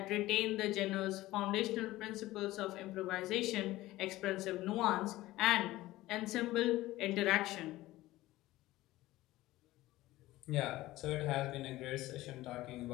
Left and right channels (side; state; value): right; quieter; 17.2 dB